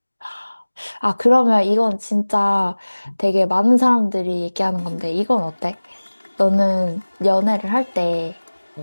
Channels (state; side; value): inverted; both; correlation -1.00